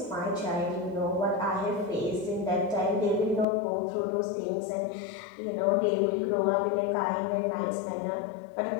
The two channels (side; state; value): right; drops out; at 3.5 s